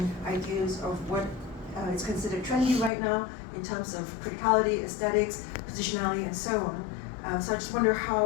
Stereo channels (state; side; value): drops out; right; at 2.9 s